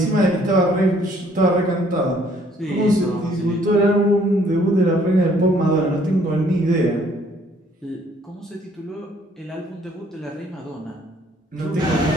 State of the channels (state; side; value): normal; both; correlation 0.62